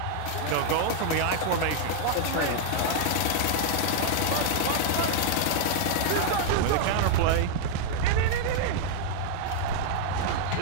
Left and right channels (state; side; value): different; both; correlation 0.00